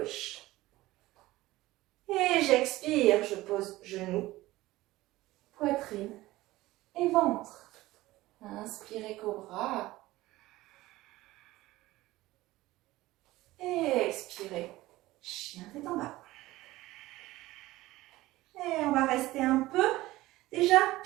Et j'expire, je pose genou, poitrine et ventre. Inspirez cobra. Et expirez, chien tête en bas. Et on va rester un peu, déjà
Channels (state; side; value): quieter; left; 17.8 dB